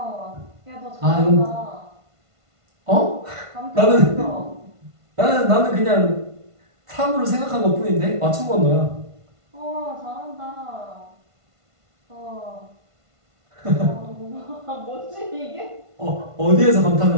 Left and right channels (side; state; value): left; late; 1.5 ms